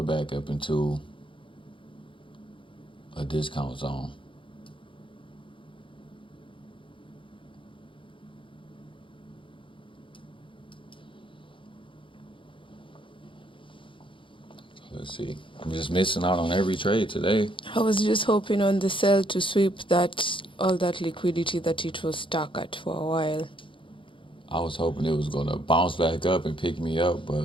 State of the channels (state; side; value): late; right; 0.25 ms